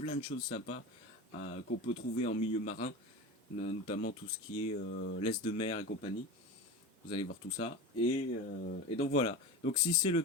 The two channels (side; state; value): both; normal; correlation 0.28